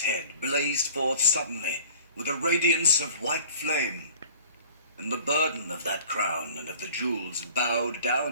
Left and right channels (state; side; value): inverted; both; correlation -0.47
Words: head blazed forth suddenly, with a radiance of white flame, and the burden of that crown and of the jewels bowed